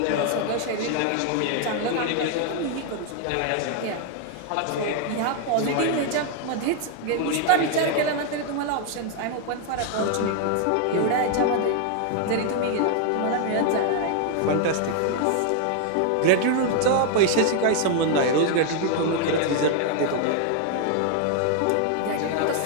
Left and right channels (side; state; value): both; different; correlation 0.00